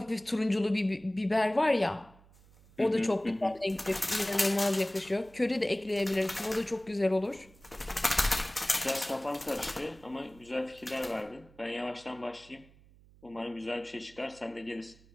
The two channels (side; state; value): right; noise; hum, 26 dB below the sound